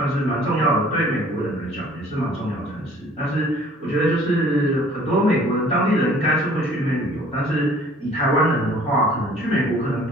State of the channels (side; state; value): both; normal; correlation 0.53